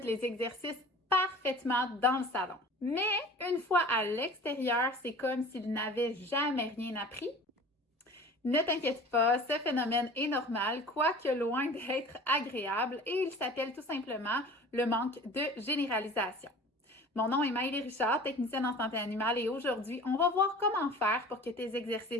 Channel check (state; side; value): normal; both; correlation 0.42